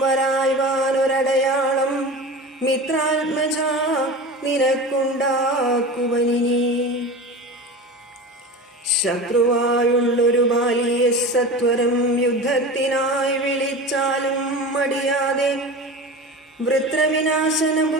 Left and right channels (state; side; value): normal; both; correlation 0.31